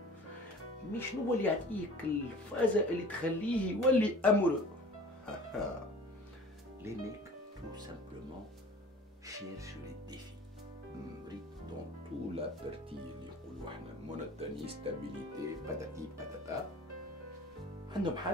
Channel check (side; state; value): both; normal; correlation 0.44